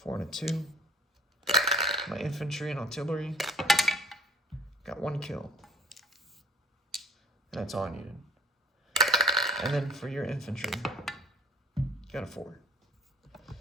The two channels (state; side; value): normal; both; correlation 0.50